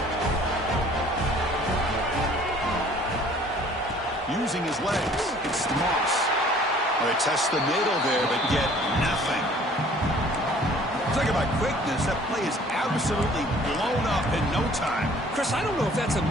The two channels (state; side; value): normal; both; correlation 0.54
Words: Using his legs, it's Moss. Well, they test the middle there, but get nothing. Talk about quickness. That play is absolutely blown up in no time. Chris, I don't know if that's a